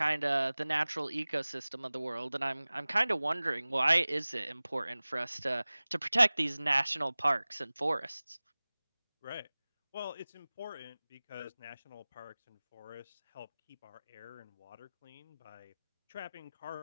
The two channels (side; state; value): both; inverted; correlation -0.99